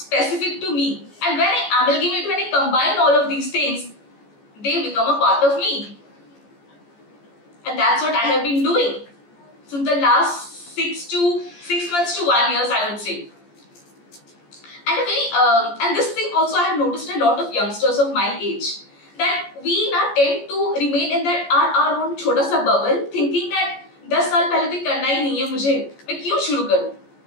to me. And when I amalgamate, when I combine all of these things, they become a part of me. And that's what I have been doing since the last 6 months to 1 year, I would say. And and this thing also I have noticed a lot of youngsters of my age, that we now tend to remain in that our own छोटा सा bubble, thinking that 10 साल पहले तो करना ही नहीं है मुझे, मैं क्यों शुरू करूँ?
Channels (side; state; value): right; late; 14 ms